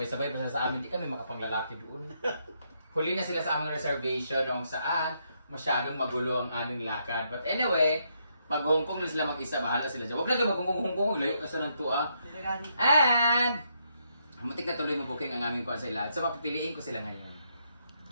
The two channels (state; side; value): inverted; both; correlation -0.76